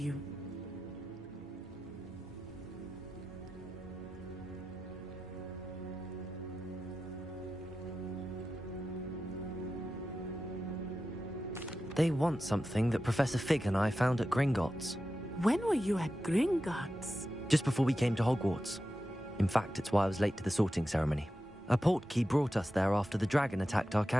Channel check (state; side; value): normal; both; correlation 0.92